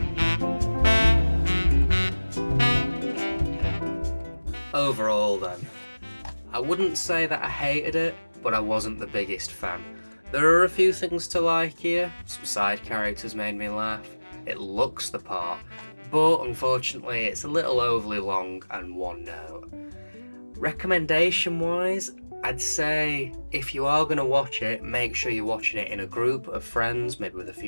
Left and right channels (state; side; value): inverted; both; correlation -1.00